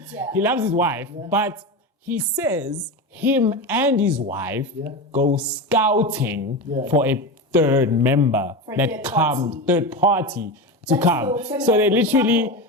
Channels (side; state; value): both; normal; correlation 0.21